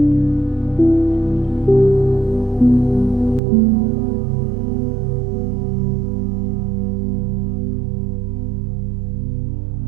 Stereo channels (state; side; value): drops out; left; at 3.4 s